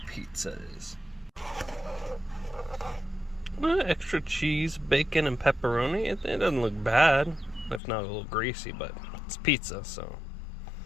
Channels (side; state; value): right; drops out; at 7.8 s